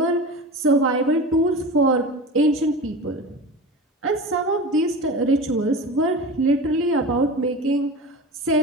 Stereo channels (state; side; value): normal; both; correlation 0.31